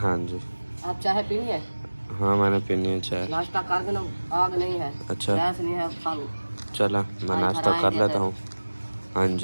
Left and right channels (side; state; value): both; inverted; correlation -1.00